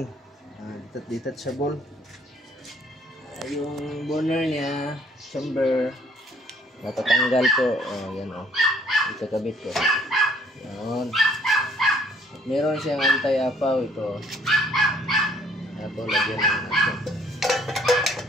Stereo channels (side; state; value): both; normal; correlation 0.62